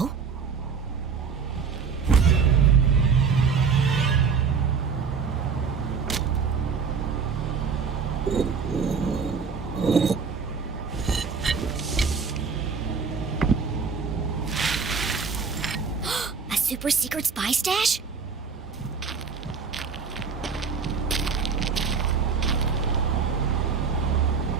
A super secret spy stash?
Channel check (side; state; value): left; quieter; 5.6 dB